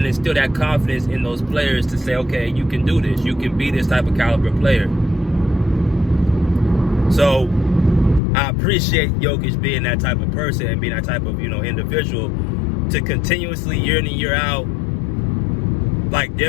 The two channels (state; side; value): drops out; right; at 8.2 s